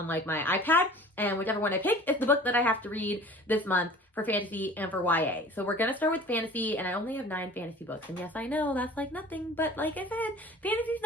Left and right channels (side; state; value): both; normal; correlation 0.45